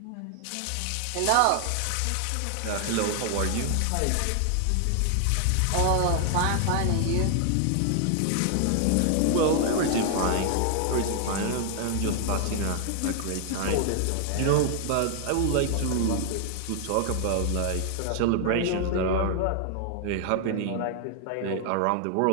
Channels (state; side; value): different; both; correlation 0.00